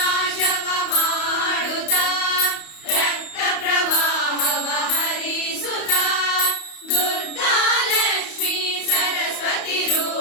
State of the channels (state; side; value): late; right; 31 ms